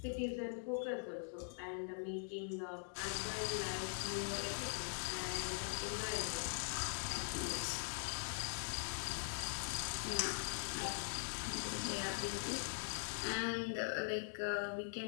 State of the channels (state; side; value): silent; right; digital silence